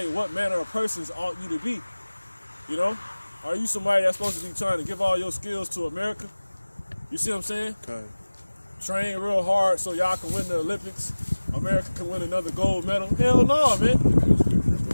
what manner of persons ought you to be. You know? Are you somebody that's supposed to be trying to give all your skills to America? You see what I'm saying? Okay. Train real hard so y'all can win the Olympics. America can win another gold medal. Hell no, man.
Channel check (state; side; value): inverted; both; correlation -1.00